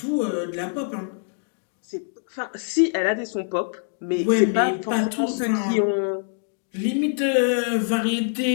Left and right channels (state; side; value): silent; right; digital silence